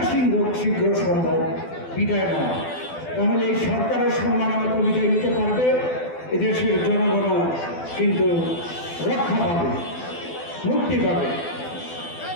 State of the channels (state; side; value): late; right; 12 ms